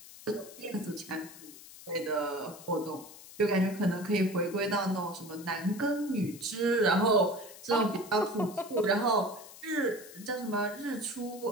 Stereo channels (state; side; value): noise; left; hiss, 17 dB below the sound